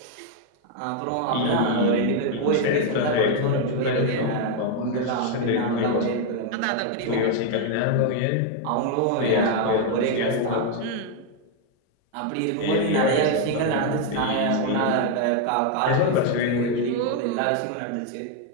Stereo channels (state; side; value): different; both; correlation 0.01